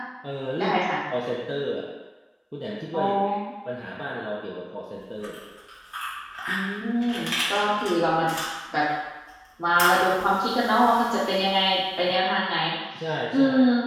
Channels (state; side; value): identical; both; correlation 1.00